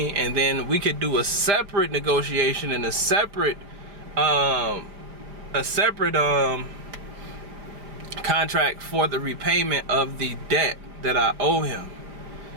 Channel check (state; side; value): late; left; 5.0 ms